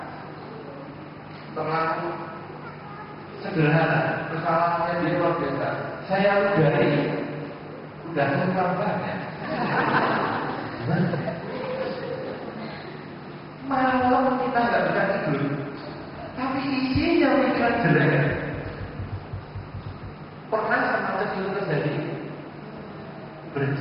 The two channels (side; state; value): both; identical; correlation 1.00